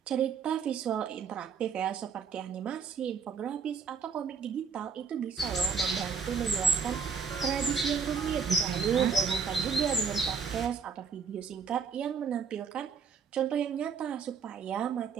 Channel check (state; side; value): quieter; left; 6.1 dB